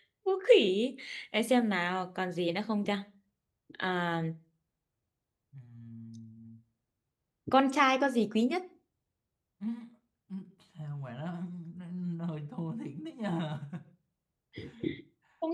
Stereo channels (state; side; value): identical; both; correlation 1.00